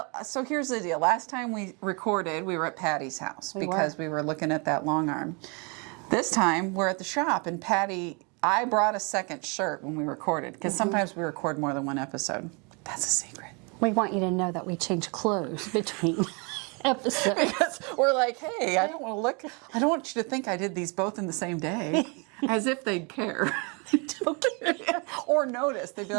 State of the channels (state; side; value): quieter; left; 32.6 dB